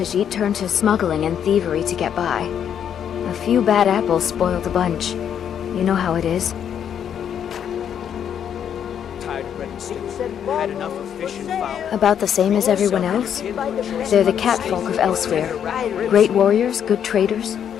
turn to smuggling and thievery to get by. A few bad apples spoil the bunch. You know how it is. Tired of bread and stew. Had enough of fish and fowl. About the same as everyone else. They're the catfolk of Elsewhere. Great warriors, good traders.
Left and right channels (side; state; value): right; quieter; 8.8 dB